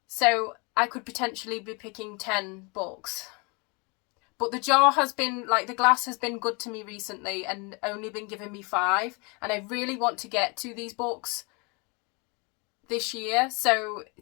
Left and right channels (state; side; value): quieter; right; 30.1 dB